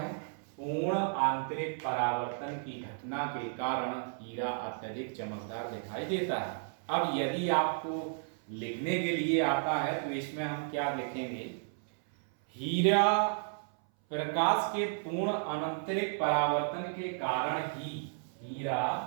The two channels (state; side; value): silent; left; 56 dB below the other